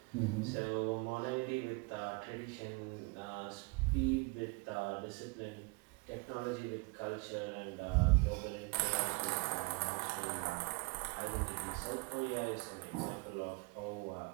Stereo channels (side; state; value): left; quieter; 30.3 dB